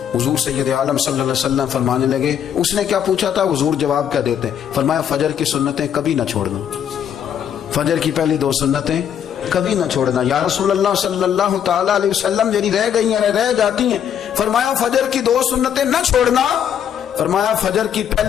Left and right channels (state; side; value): quieter; right; 9.0 dB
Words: حضور سید عالم صلی اللہ علیہ وسلم فرمانے لگے، اس نے کیا پوچھا تھا، حضور جواب کیا دیتے، فرمایا فجر کی سنتیں کبھی نہ چھوڑنا، فجر کی پہلی 2 سنتیں کبھی نہ چھوڑنا. یا رسول اللہ صلی اللہ تعالی علیہ وسلم میری رہ گئی ہیں رہ جاتی ہیں، فرمایا فجر کی 2 سنتیں نہ چھوڑنا، فرمایا فجر کی